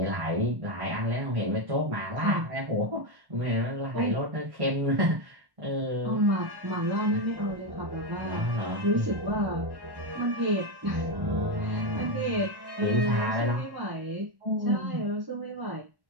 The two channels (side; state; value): left; late; 1.1 ms